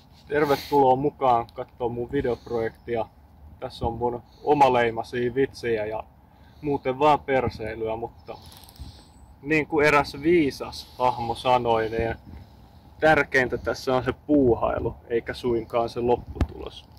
Tervetuloa mukaan katsoa mun videoprojektia. Tässä on mun omaleimaisia vitsejä ja muuten vaan perseilyä, mutta niin kuin eräs viisas hahmo sanoi, niin tärkeintä tässä on se puuhailu, eikä suinkaan se lopputulos.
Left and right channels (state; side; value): identical; both; correlation 1.00